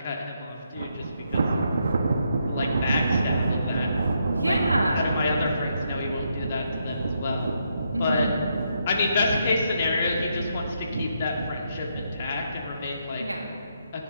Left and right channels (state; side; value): inverted; both; correlation -0.78